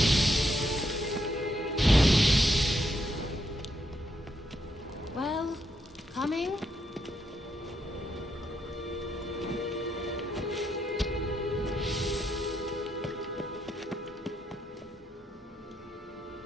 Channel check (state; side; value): normal; both; correlation 0.79